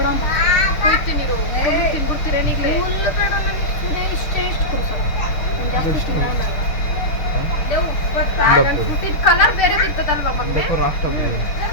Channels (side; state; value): right; late; 6.6 ms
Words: ಕೊಡ್ತೀನಿ, ತಿನ್ಬಿಡ್ತೀರೇನು ಈಗಲೇ? ಕಲರ್ ಬೇರೆ ಇರ್ತದಲ್ವಾ ಮಗ್ನೆ?